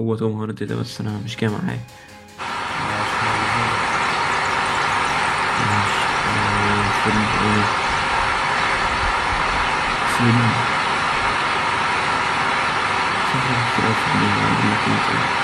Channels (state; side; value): identical; both; correlation 1.00